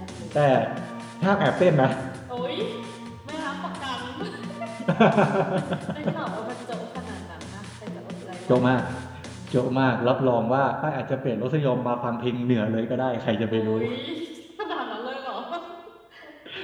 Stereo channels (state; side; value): identical; both; correlation 1.00